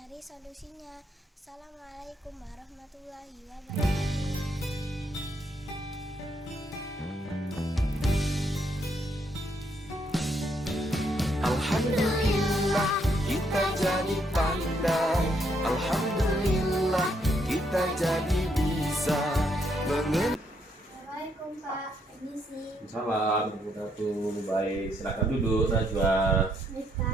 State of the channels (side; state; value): both; normal; correlation 0.74